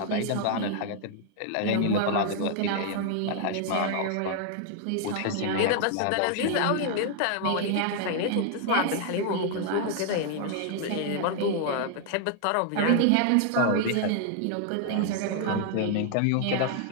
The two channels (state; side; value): different; both; correlation 0.00